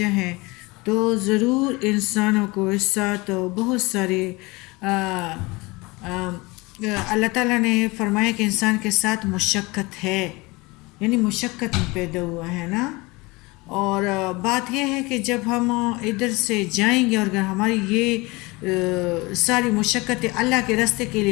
ہے تو ضرور انسانوں کو اس ساتھ بہت سارے اللہ تعالیٰ نے فرمایا کہ انسان کے ساتھ مشقت ہے، یعنی مشقت میں پیدا ہوا ہے نا۔ اور بات یہ ہے کہ جب ہم ادھر سے جائیں گے اور اگر ہماری یہ ساری مشقتیں اللہ کے راستے کے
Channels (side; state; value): right; quieter; 24.0 dB